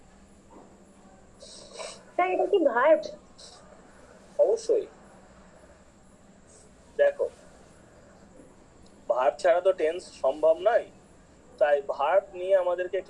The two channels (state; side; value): identical; both; correlation 1.00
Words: স্যার এটা কি ভার্ব? অবশ্যই। দেখো ভার্ব ছাড়া তো টেন্স সম্ভব নয়, তাই ভার্ব নিয়ে আমাদেরকে